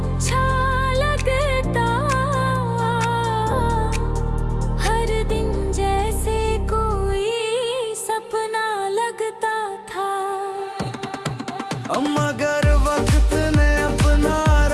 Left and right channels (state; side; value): identical; both; correlation 1.00